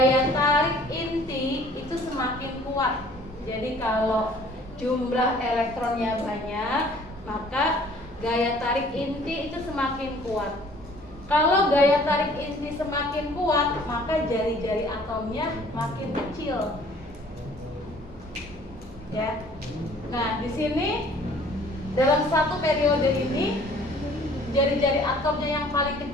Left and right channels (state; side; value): normal; both; correlation 0.54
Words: tarik inti itu semakin kuat. Jadi kalau jumlah elektronnya banyak, maka gaya tarik inti itu semakin kuat. Kalau gaya tarik inti semakin kuat, maka jari-jari atomnya makin kecil. Ya. Nah, di sini dalam satu periode ini jari-jari atomnya yang paling